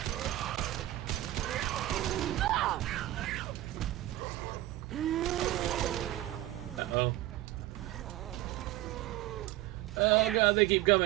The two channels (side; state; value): left; quieter; 15.7 dB